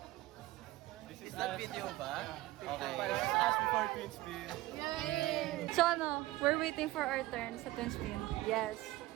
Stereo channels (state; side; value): quieter; left; 17.9 dB